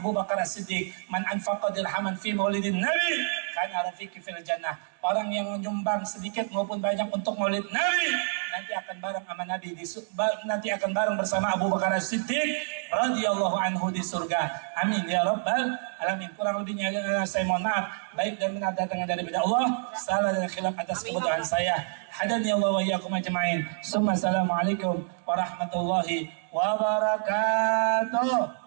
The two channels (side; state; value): left; silent; digital silence